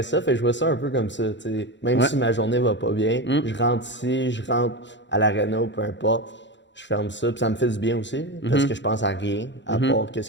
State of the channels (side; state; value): right; late; 0.53 ms